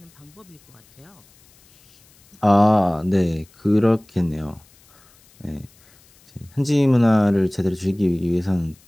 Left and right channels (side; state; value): left; noise; hiss, 30 dB below the sound